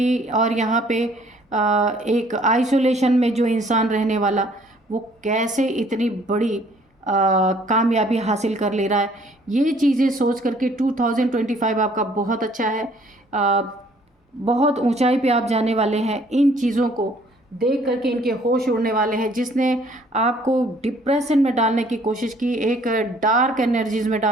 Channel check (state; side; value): normal; both; correlation 0.60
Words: और यहाँ पे एक आइसोलेशन में जो इंसान रहने वाला, वो कैसे इतनी बड़ी कामयाबी हासिल कर ले रहा है। ये चीज़ें सोच करके 2025 आपका बहुत अच्छा है। बहुत ऊंचाई पे आप जाने वाले हैं। इन चीज़ों को देख करके इनके होश उड़ने वाले हैं। जिसने आपको डिप्रेशन में डालने की कोशिश की, एक डार्क एनर्जीज में